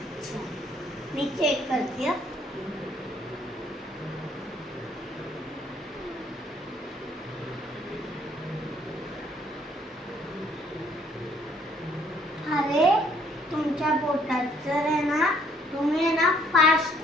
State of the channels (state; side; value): normal; both; correlation 0.64